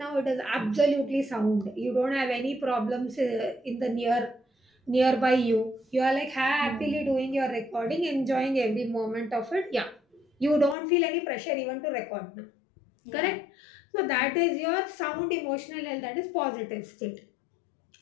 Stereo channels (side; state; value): right; drops out; at 10.8 s